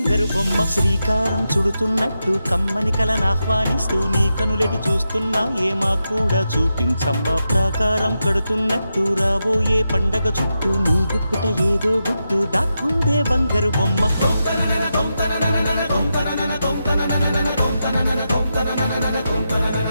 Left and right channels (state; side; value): inverted; both; correlation -0.87